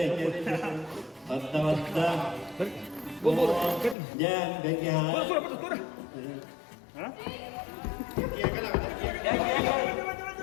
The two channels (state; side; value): drops out; right; at 4.0 s